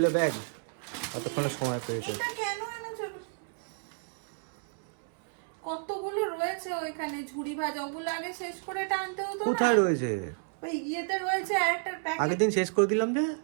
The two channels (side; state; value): left; silent; 57 dB below the other